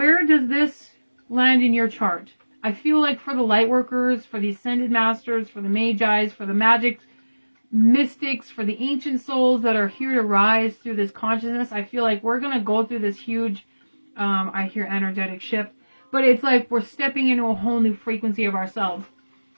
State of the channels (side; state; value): both; inverted; correlation -1.00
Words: does this land in your chart? I feel like for the light workers, for the ascended masters, for the magis, for the magic mystics, for the ancient souls that are here to rise through this consciousness, I feel like we're going to go through this huge, I hear energetic shift, but it's like we're stepping into a whole new frequency of ourselves.